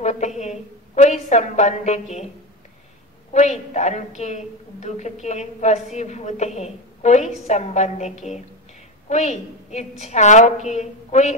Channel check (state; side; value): normal; both; correlation 0.17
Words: है, कोई संबंध के, कोई तन के दुख के वशीभूत है, कोई संबंध के, कोई इच्छाओं के, कोई